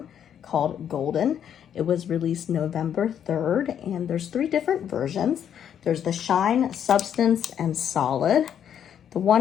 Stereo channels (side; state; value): right; quieter; 9.1 dB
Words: called Golden. It was released November 3rd and there's 3 different versions. There's the Shine, Substance, and Solid. The